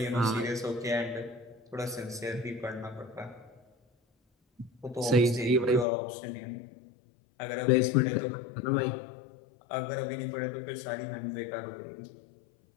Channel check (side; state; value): right; drops out; at 5.9 s